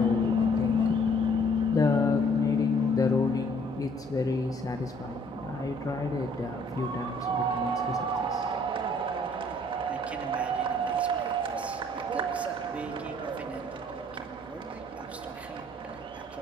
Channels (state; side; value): normal; both; correlation 0.60